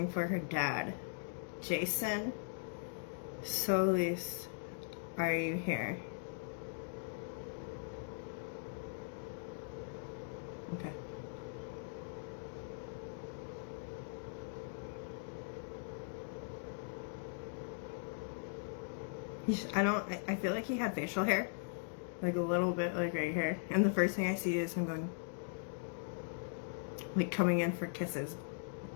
for her dad. Jason Solis, are you here? Okay. I feel like he had facial hair. Like a little bit, like right here. And the first thing I see is him going, like coming in for kisses.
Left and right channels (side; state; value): right; silent; digital silence